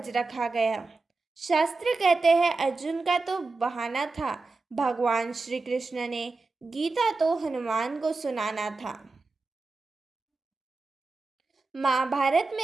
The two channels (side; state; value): left; quieter; 3.7 dB